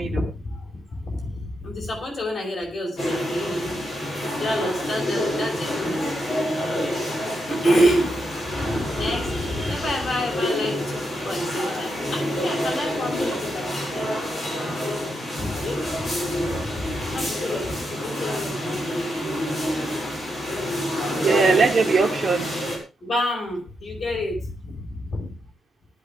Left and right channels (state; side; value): normal; both; correlation 0.83